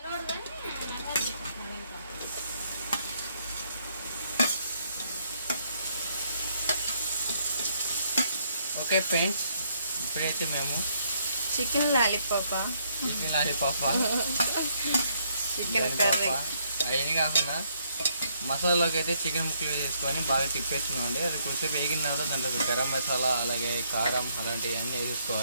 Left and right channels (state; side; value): inverted; both; correlation -0.70